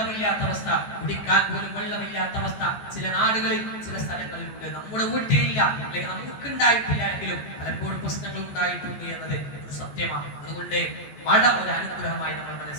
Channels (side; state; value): right; late; 14 ms